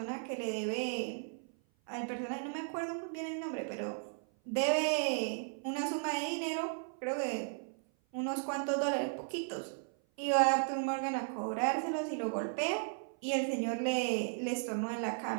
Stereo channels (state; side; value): silent; left; 54 dB below the other